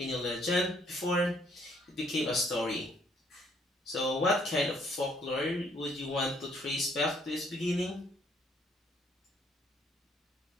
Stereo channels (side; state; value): both; normal; correlation 0.65